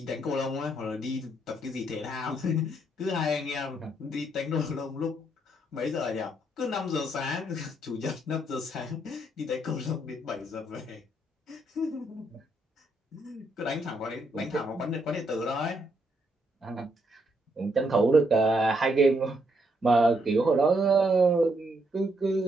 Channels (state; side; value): normal; both; correlation 0.75